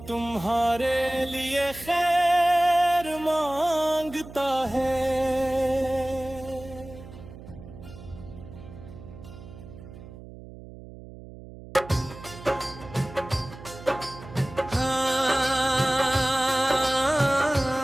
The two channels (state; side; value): noise; right; hum, 16 dB below the sound